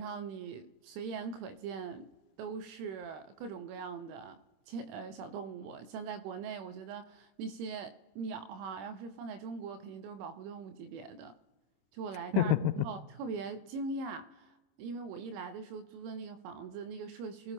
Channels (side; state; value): left; late; 26 ms